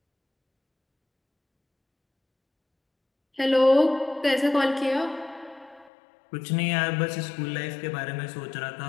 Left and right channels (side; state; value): right; drops out; at 5.9 s